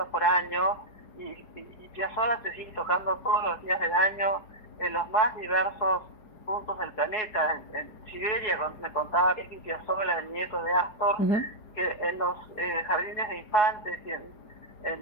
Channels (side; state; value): right; late; 4.8 ms